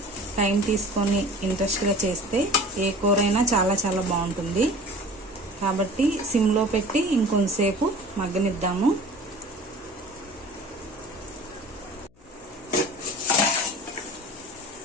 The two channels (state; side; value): noise; left; hum, 30 dB below the sound